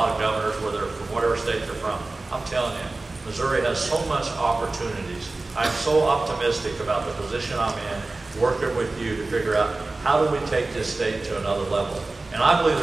of governors, whether from whatever state they're from. I'm telling you, Missouri has so much opportunities. I'm so optimistic about the position I'm in, working with you to figure out how do we take this state to another level. And I believe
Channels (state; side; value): quieter; left; 3.2 dB